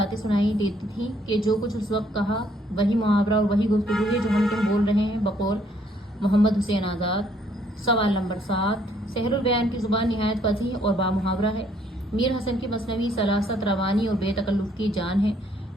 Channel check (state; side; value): normal; both; correlation 0.66